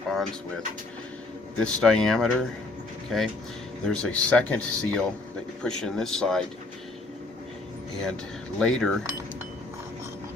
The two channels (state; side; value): quieter; right; 3.1 dB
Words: with this diameter. Okay, there's a second seal that you push in this side, and later